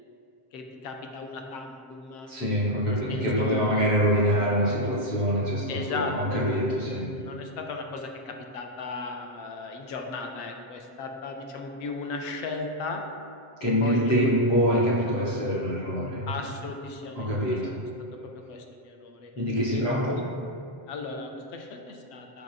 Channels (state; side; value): late; right; 7.7 ms